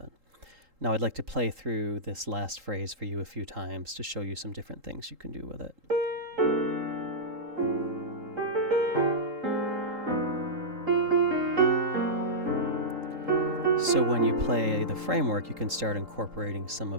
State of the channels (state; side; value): late; left; 3.8 ms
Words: Now I'd like to play through this last phrase for you a few times to show you some different things you can do with it. So when you play the framework, you can start incorporating some